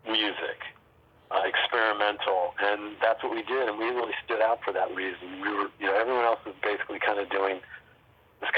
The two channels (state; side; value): identical; both; correlation 1.00